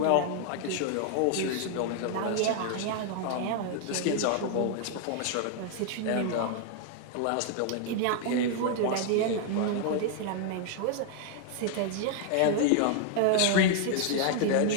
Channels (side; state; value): both; different; correlation 0.00